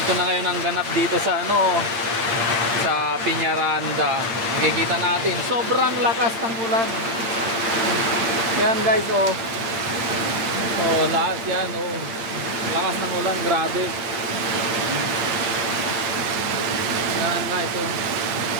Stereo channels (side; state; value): left; late; 8.7 ms